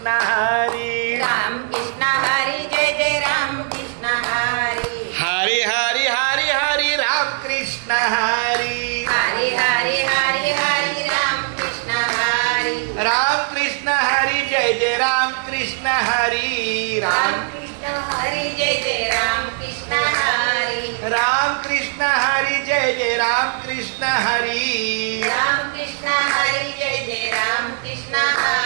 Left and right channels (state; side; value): silent; left; digital silence